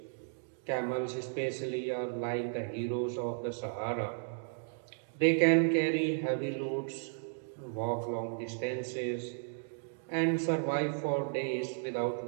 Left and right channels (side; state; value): left; silent; digital silence